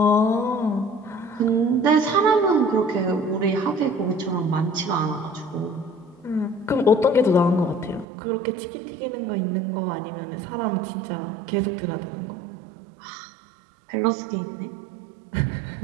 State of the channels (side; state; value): left; drops out; at 8.1 s